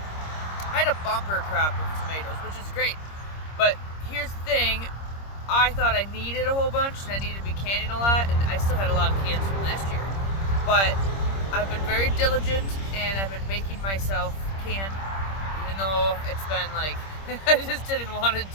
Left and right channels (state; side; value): late; right; 26 ms